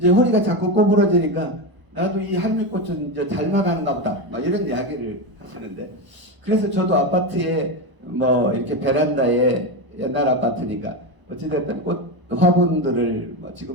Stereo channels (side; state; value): left; late; 1.0 ms